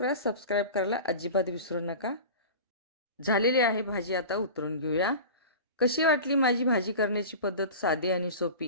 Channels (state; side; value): inverted; both; correlation -0.33